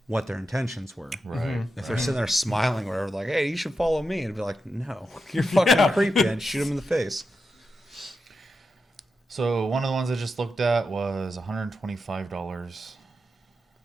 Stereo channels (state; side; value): normal; both; correlation 0.88